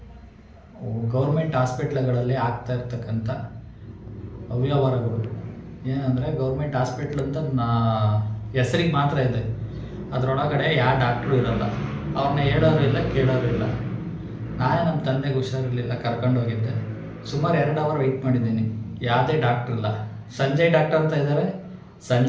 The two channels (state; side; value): identical; both; correlation 1.00